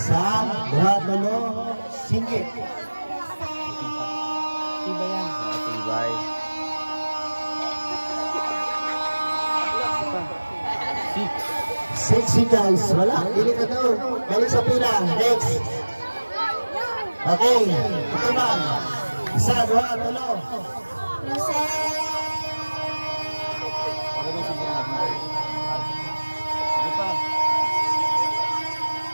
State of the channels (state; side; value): inverted; both; correlation -1.00